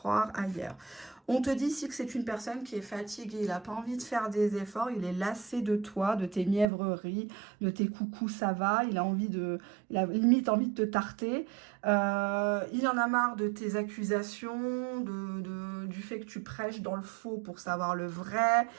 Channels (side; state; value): left; drops out; at 6.7 s